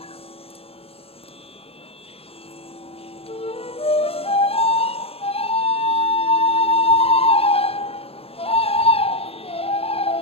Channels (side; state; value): right; late; 0.28 ms